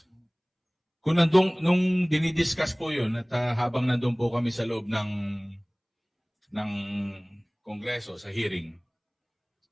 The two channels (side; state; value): both; identical; correlation 1.00